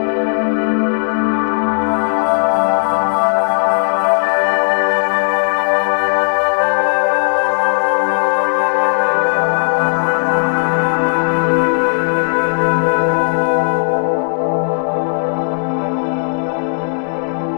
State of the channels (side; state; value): right; silent; digital silence